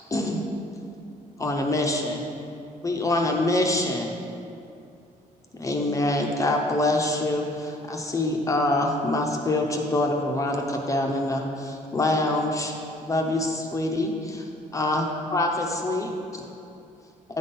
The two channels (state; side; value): normal; both; correlation 0.56